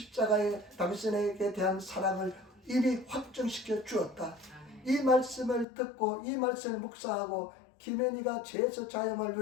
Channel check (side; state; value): right; drops out; at 5.7 s